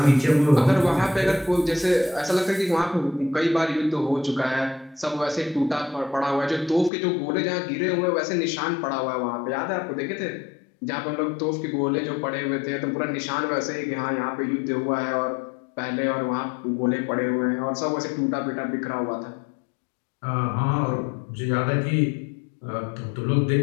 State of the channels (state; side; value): drops out; right; at 6.9 s